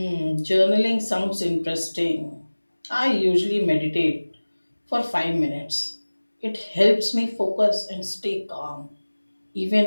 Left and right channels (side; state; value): both; inverted; correlation -1.00